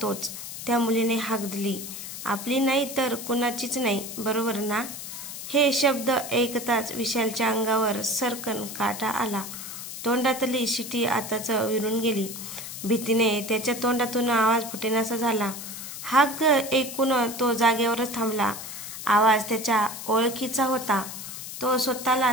तोच। त्या मुलीने हाक दिली, आपली नाही तर कुणाचीच नाही, बरोबर ना? हे शब्द ऐकताच विशालच्या अंगावर सरकन काटा आला। तोंडातली शिटी आताच विरून गेली। भीतीने त्याच्या तोंडातून आवाज फुटेनासा झाला। हाक ऐकून तो जागेवरच थांबला। आवाज त्याच्या ओळखीचा होता। तो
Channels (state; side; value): noise; left; hiss, 9 dB below the sound